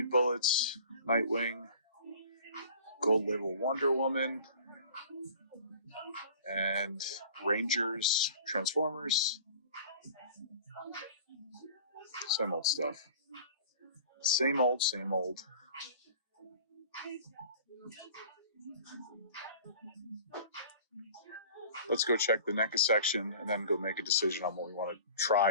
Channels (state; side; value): inverted; both; correlation -0.44